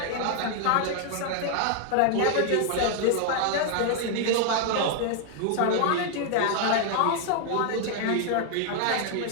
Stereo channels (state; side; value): different; both; correlation 0.00